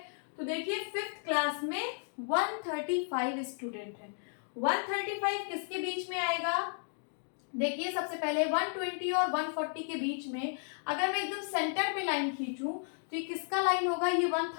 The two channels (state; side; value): silent; right; 55 dB below the other